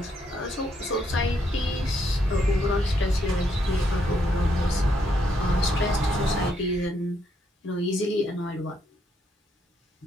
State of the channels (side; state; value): both; normal; correlation 0.75